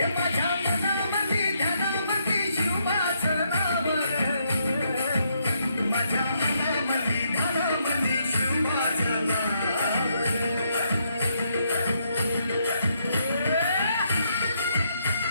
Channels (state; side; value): inverted; both; correlation -0.75